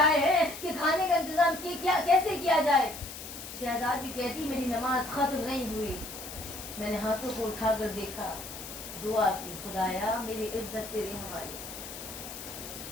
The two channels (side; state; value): left; noise; hiss, 11 dB below the sound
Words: हैं कि खाने का इंतजाम कैसे किया जाए। शहजादी कहती, मेरी नमाज खत्म नहीं हुई, मैंने हाथों को उठाकर देखा, दुआ की, खुदाया मेरी इज्जत तेरे हवाले।